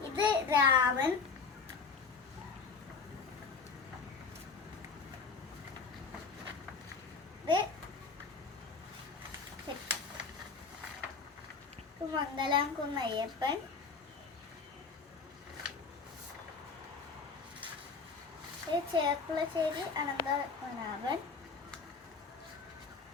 ഇത് രാമൻ, ഇത് മംഗലാംകുന്ന് അയ്യപ്പൻ, ഇത് ചേർപ്പുളശ്ശേരി അനന്തപത്മനാഭൻ,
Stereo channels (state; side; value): quieter; right; 4.8 dB